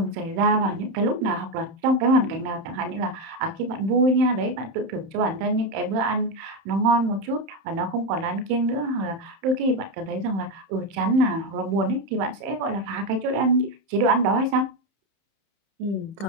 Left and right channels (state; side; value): late; left; 31 ms